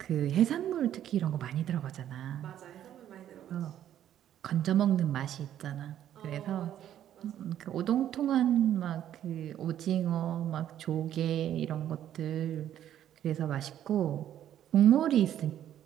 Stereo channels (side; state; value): left; quieter; 11.1 dB